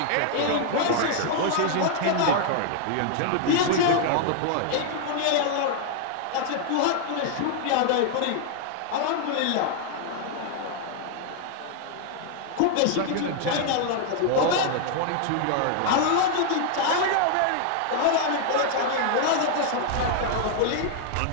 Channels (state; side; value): different; both; correlation 0.00